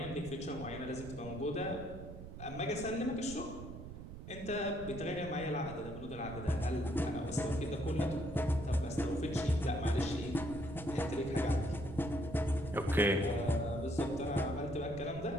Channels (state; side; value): noise; right; rumble, 11 dB below the sound